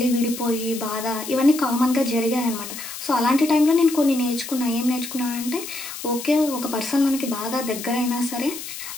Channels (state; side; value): noise; left; hiss, 10 dB below the sound